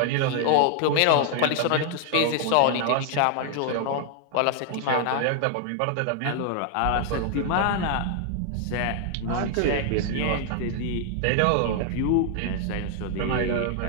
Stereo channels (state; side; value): different; both; correlation 0.00